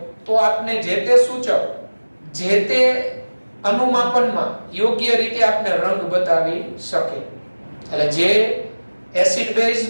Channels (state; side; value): inverted; both; correlation -1.00